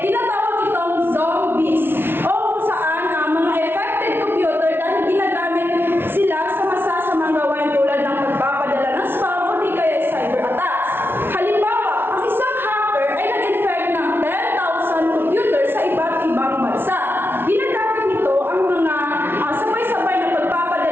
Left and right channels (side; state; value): left; late; 0.11 ms